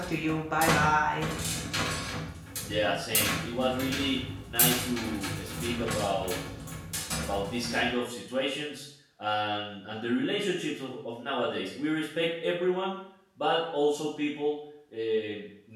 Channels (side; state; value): both; identical; correlation 1.00